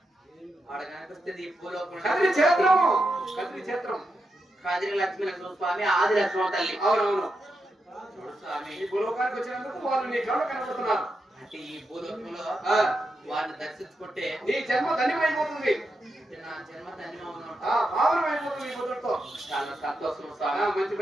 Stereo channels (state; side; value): normal; both; correlation 0.86